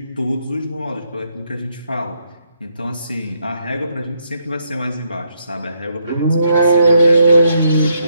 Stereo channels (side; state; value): both; inverted; correlation -0.76